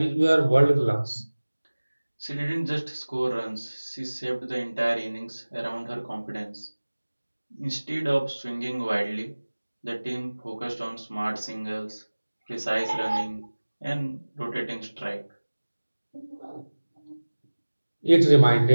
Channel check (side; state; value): both; inverted; correlation -1.00